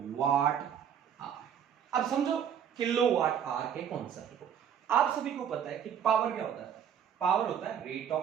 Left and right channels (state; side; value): quieter; left; 8.6 dB